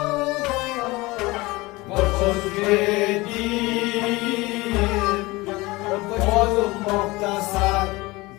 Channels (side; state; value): right; quieter; 22.0 dB